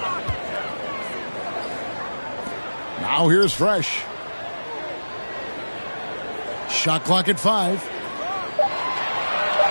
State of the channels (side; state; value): both; inverted; correlation -1.00